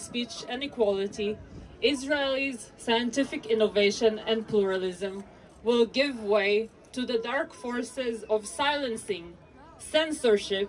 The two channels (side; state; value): both; identical; correlation 1.00